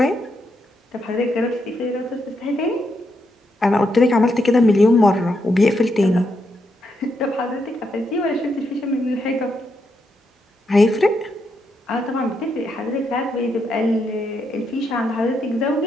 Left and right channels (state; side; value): normal; both; correlation 0.81